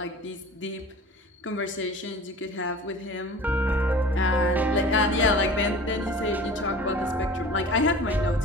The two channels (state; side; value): normal; both; correlation 0.41